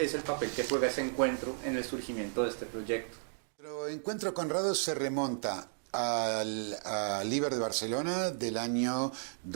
el papel que juega ese encuentro en el surgimiento de este proyecto. Nuestro encuentro con Conrado se remonta al Liber de Barcelona del año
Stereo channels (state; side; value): silent; left; digital silence